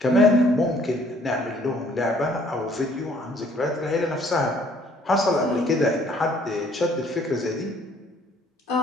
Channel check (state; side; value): normal; both; correlation 0.60